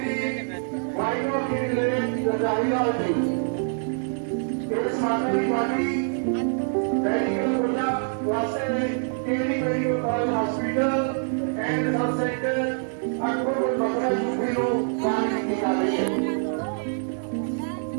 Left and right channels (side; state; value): left; silent; 60 dB below the other